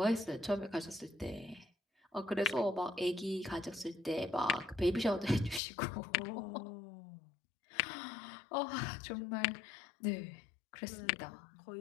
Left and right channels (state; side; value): drops out; right; at 5.6 s